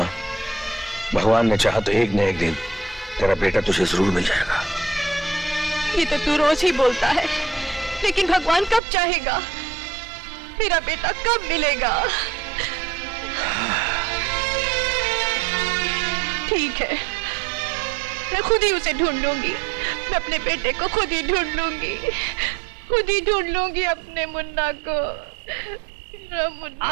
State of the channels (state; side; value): drops out; left; at 8.8 s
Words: भगवान ने चाहा तो एक न एक दिन तेरा बेटा तुझे जरूर मिल जाएगा। ये तो तू रोज ही बोलता है, लेकिन भगवान कब चाहेगा? मेरा बेटा कब मिलेगा? ठीक है, मैं खुद ही उसे ढूंढ लूंगी। मैं अपने बेटे को खुद ही ढूंढ लूंगी, खुद ही ढूंढ लूंगी अपने मुन्ना को। मुन्ना।